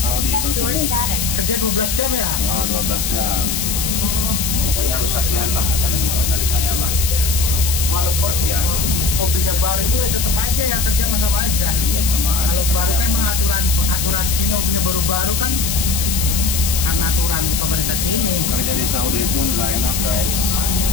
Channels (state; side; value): noise; left; hiss, 1 dB below the sound